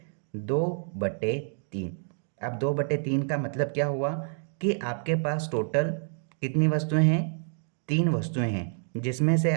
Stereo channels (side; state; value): left; silent; 59 dB below the other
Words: 2/3। अब 2/3 का मतलब क्या हुआ कि आपके पास टोटल कितनी वस्तुएं हैं, 3 वस्तुएं हैं, जिसमें से